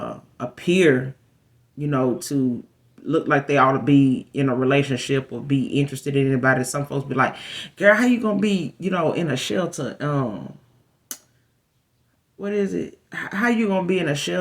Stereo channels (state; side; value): identical; both; correlation 1.00